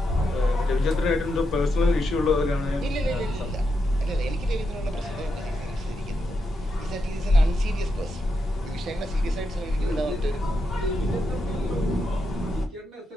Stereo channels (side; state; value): both; normal; correlation 0.84